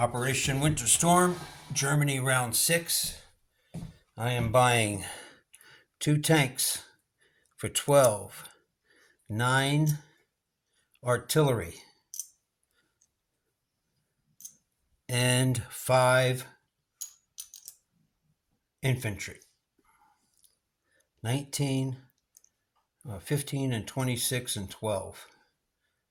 Winter Storm, Germany Round 6. I am buying 2 tanks for 12, 9 artillery, and 5 infantry. 19, 15, and 26, and 12.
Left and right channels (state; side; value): identical; both; correlation 1.00